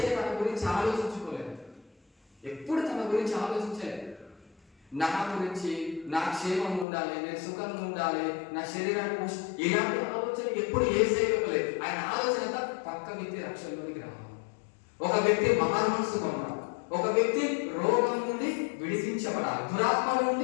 తన గురించి ఆలోచించుకోలేదు, ఎప్పుడు తన గురించి ఆలోచించలేదు. నా గురించి, నా క్షేమం ఉండాలి, నేను సుఖంగా ఉండాలి, నా శరీరాన్ని ఇలాంటి ఆలోచన ఎప్పుడు యేసయ్య ఇవ్వలేదు. ఆయన ఆలోచన అంతా పక్క వ్యక్తి రక్షణలోనికి రావాలి, ఒక వ్యక్తి మనసుగా ఉండాలి, ఒక వ్యక్తి రోగం నుండి విడిపించబడాలి, దురాత్మ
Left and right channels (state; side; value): drops out; right; at 6.9 s